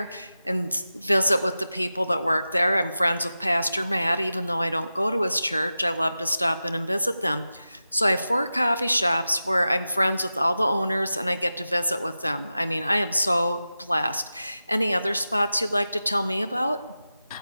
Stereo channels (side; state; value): both; inverted; correlation -0.93